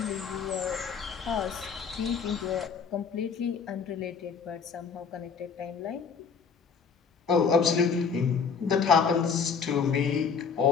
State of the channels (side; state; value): right; quieter; 6.0 dB